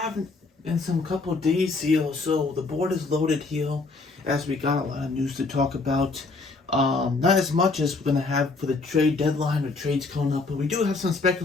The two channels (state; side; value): quieter; right; 3.8 dB